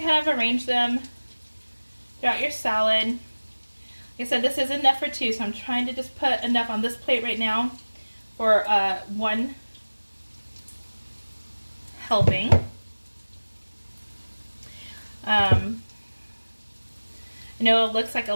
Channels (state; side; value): inverted; both; correlation -1.00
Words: kind of arrange them throughout your salad. Like I said, this is enough for two, so I'm trying to just put enough on this plate right now for one helping. I know it looks like a